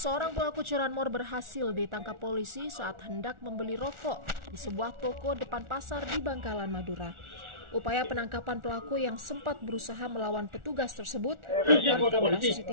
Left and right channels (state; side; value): late; left; 1.4 ms